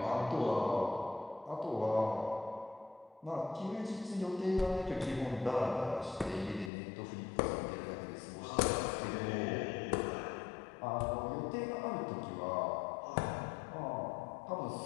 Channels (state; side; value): drops out; right; at 6.7 s